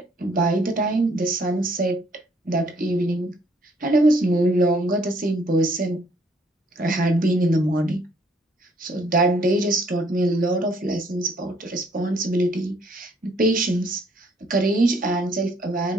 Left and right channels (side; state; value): both; normal; correlation 0.65